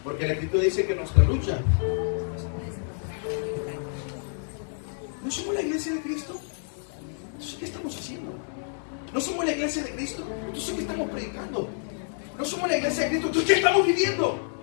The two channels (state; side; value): silent; right; digital silence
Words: Porque la Escritura dice que nuestra lucha, ¿no somos la iglesia de Cristo? Entonces, ¿qué estamos haciendo? ¿No somos la iglesia de Cristo? Entonces, ¿qué estamos predicando? ¿No somos la iglesia de Cristo? Entonces, ¿qué estamos viviendo?